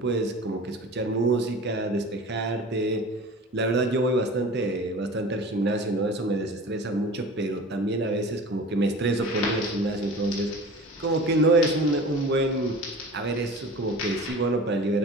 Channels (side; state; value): both; normal; correlation 0.38